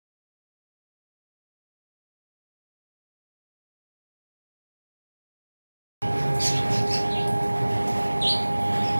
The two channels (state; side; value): inverted; both; correlation -1.00